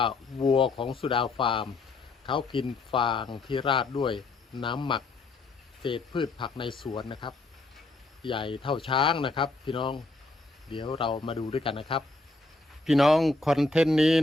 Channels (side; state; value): right; quieter; 3.3 dB